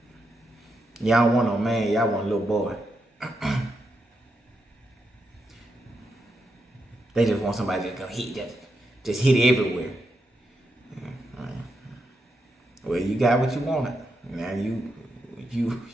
Y'all want no man, y'all want a little boy. They just want somebody to go hit, just hit it everywhere. Well, you got what you wanted. Now you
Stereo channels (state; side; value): normal; both; correlation 0.84